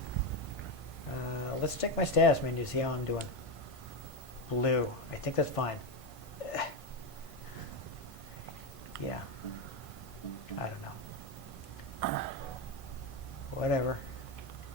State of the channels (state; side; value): late; right; 1.5 ms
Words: Let's check my status menu to see how I'm doing. Blue. I think that's fine. Yeah. I don't know. Whatever.